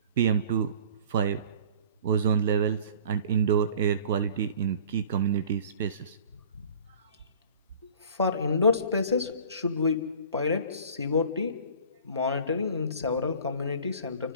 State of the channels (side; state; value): both; inverted; correlation -0.46